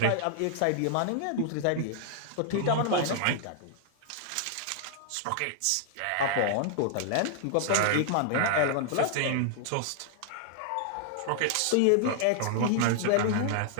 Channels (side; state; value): both; different; correlation 0.00